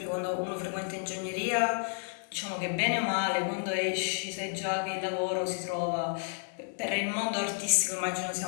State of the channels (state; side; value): silent; right; 57 dB below the other